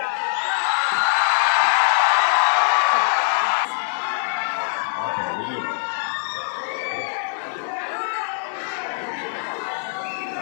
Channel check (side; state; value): right; silent; digital silence